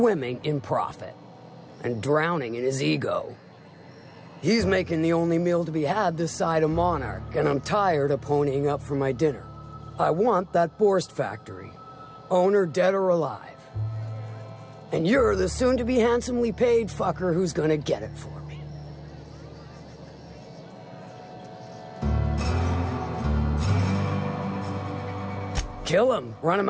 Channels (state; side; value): identical; both; correlation 1.00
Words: in profit and drowning in his ego. He's making the only meal to be had this side of Monarch, and I'm tired of ponying up for my dinner. I want that Borst factory, owner dead or alive. And you're the soon-to-be handsomely paid fucker who's gonna get it for me. Kill him, run him